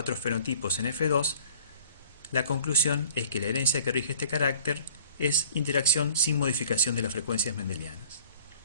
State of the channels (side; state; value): both; inverted; correlation -0.51